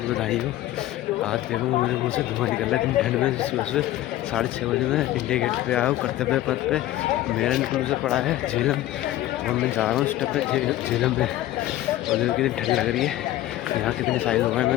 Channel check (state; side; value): quieter; right; 14.8 dB